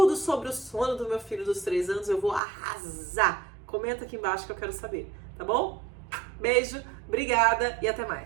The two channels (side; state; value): left; drops out; at 2.4 s